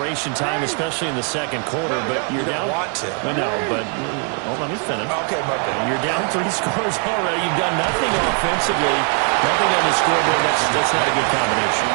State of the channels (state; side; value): quieter; left; 39.1 dB